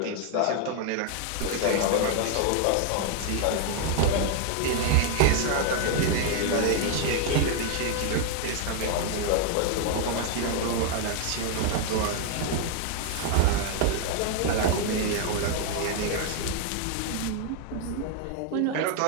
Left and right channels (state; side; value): different; both; correlation 0.00